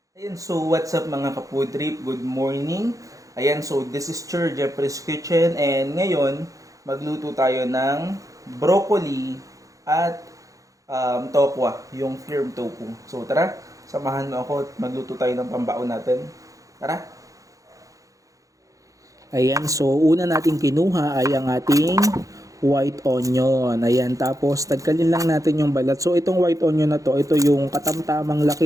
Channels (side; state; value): left; late; 0.16 ms